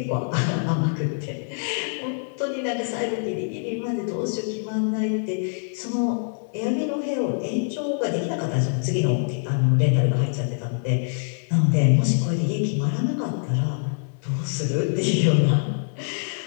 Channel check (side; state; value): right; silent; digital silence